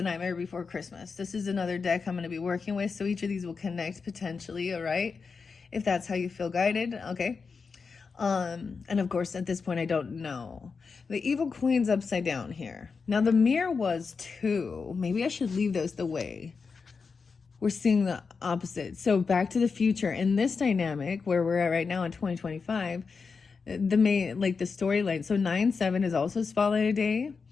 Nightmare Before Christmas. This is another deck I'm going to be working with, so each of these will connect potentially, all right? If that's how you feel guided, okay? And of course, at this point, I don't know. The Evil Queen's upside down here. Now, the mirror was 2. Maybe I should leave those the way. We're seeing the opposite. So Back to the Future, in this dynamic, where we're at right now in 2025, the main, like the storyline. So 9/7 is also spotlighted day.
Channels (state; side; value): quieter; right; 5.1 dB